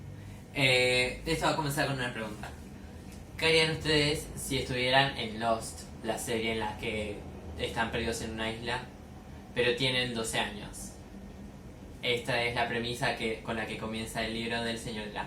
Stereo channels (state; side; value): identical; both; correlation 1.00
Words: Esto va a comenzar con una pregunta. ¿Qué harían ustedes si estuvieran en Lost, la serie en la que están perdidos en una isla, pero tienen 12 años? Esta es la premisa con la que comienza el libro del Señor de